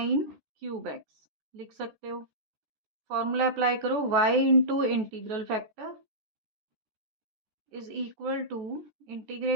cube x लिख सकते हो। फॉर्मूला अप्लाई करो, y into integral factor is equal to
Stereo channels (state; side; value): late; left; 14 ms